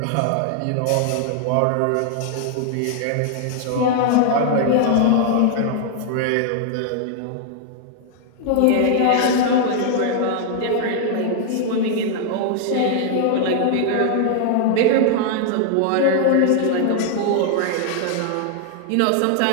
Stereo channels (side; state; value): both; different; correlation 0.00